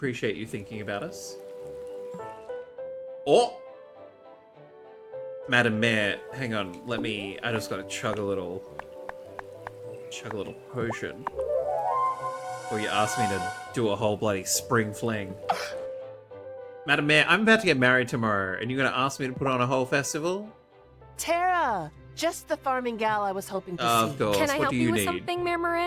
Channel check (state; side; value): identical; both; correlation 1.00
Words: you thinking about us. Oh! Madam Mayor, hang on, I just gotta chug a little potion before you ask me to do a whole bloody spring fling. Madam Mayor, I'm about to get married tomorrow, and you're gonna ask me to put on a whole festival? Tara, just the farming gal I was hoping to see. Of course. Can I What help do you you with need? something, Mayor